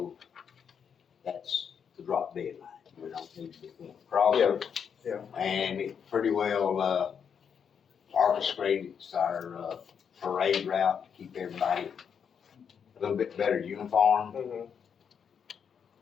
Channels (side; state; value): right; quieter; 7.3 dB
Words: that's the drop dead line. We don't need to be crossing. Yeah, And it pretty well, orchestrates our, parade route to keep everybody a little bit better uniform. Mhm.